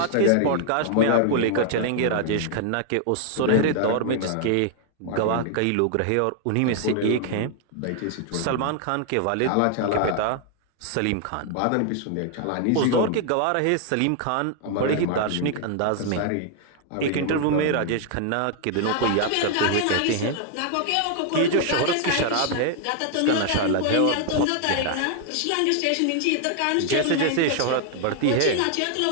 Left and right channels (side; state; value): both; different; correlation 0.00